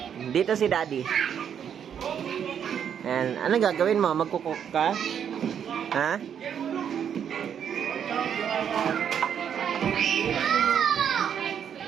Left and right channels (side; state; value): left; quieter; 8.4 dB